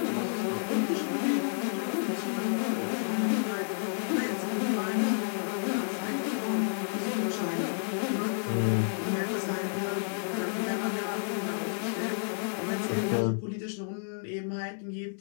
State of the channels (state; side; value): silent; right; digital silence